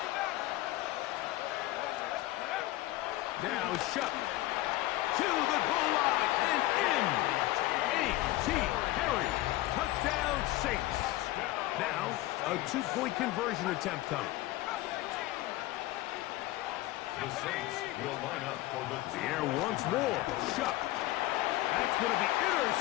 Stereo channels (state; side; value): quieter; right; 17.2 dB